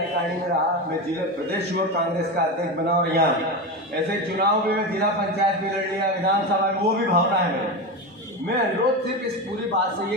में रहा, मैं जिला प्रदेश युवक कांग्रेस का अध्यक्ष बना, और यहाँ ऐसे चुनाव में मैं जिला पंचायत भी लड़ लिया, विधानसभा में, वो भी भावना है मेरी। मैं अनुरोध सिर्फ इस पूरी बात से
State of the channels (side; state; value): both; normal; correlation 0.19